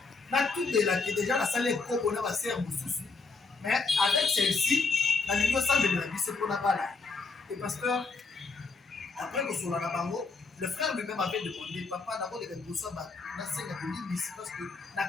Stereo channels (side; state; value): right; quieter; 4.2 dB